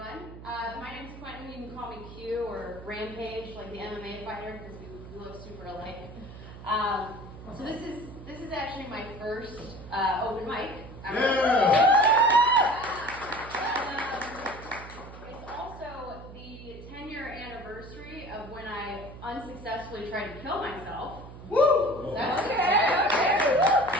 My name's Quentin. You can call me Q or Rampage, like the MMA fighter, because we look super alike. So this is actually my first open mic. It's also the 10-year anniversary of when I unsuccessfully tried to kill myself. Woo! That's okay.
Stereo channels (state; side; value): noise; right; hum, 15 dB below the sound